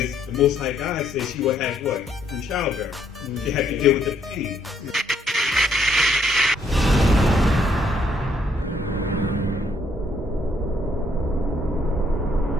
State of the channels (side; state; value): both; normal; correlation 0.69